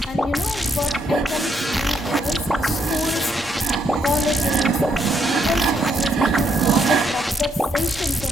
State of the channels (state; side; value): normal; both; correlation 0.75